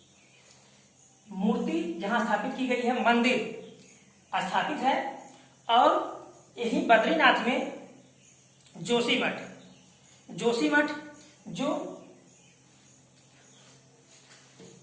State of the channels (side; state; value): both; identical; correlation 1.00